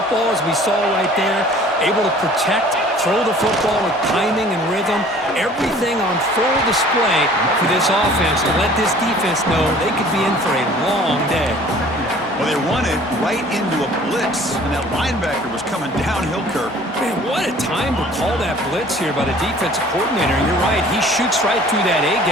as we saw right there, able to protect, throw the football with timing and rhythm. Everything on full display for this offense to let this defense know they could be in for a long day. Well, they run it right into a blitz, and that linebacker was coming downhill, Kirk. Man, what a time to call that blitz here by the defensive coordinator. You're right, he shoots right through that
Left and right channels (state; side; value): normal; both; correlation 0.51